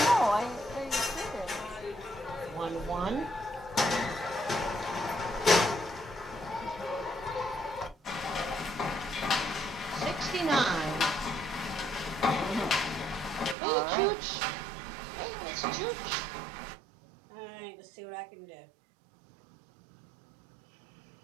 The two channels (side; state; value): left; drops out; at 13.6 s